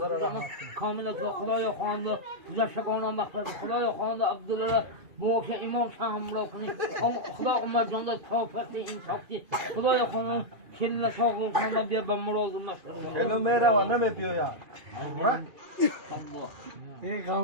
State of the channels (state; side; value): late; left; 2.5 ms